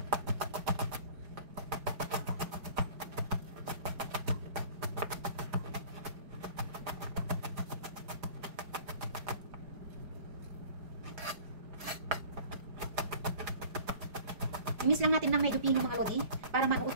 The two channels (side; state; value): left; late; 4.9 ms